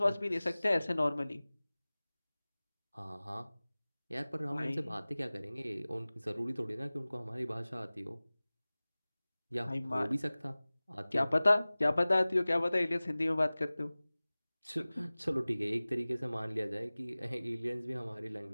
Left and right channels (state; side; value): inverted; both; correlation -0.99